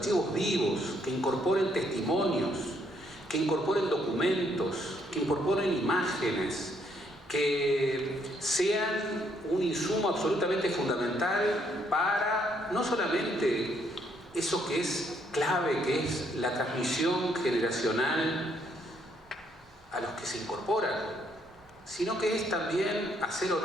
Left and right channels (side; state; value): both; normal; correlation 0.71